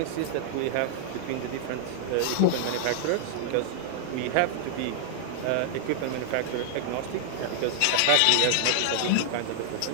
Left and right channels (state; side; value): different; both; correlation -0.01